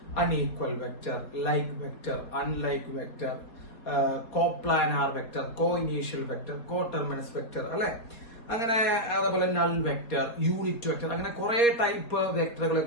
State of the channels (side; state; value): right; late; 4.2 ms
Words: unequal vector, like vector, unlike vector, coplanar vector, co initial vector, co terminus vector അല്ലെ? അങ്ങനെ അതേപോലെ നൾ വെക്റ്റർ, യൂണിറ്റ് വെക്റ്റർ, അങ്ങനെ കുറെ ടൈപ്പ് വെക്ടറുകളെ